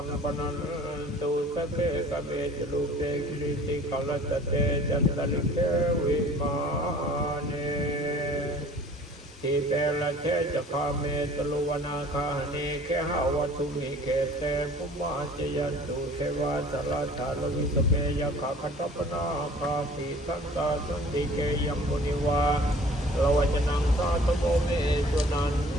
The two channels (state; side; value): normal; both; correlation 0.49